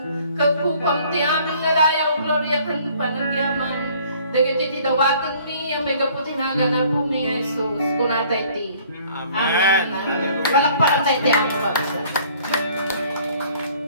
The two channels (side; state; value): both; inverted; correlation -0.57